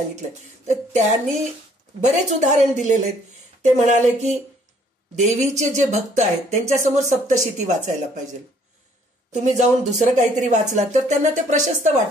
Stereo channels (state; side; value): normal; both; correlation 0.62